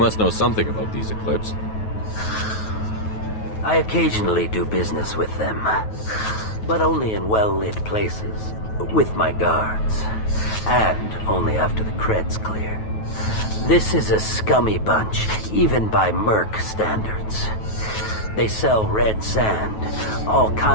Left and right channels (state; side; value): late; right; 9.3 ms